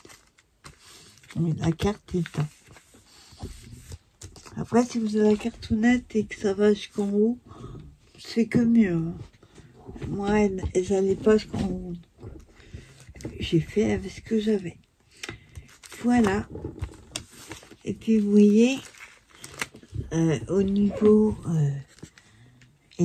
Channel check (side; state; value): both; identical; correlation 1.00